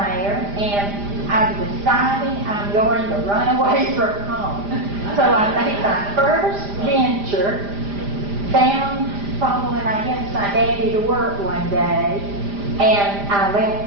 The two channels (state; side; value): late; left; 5.0 ms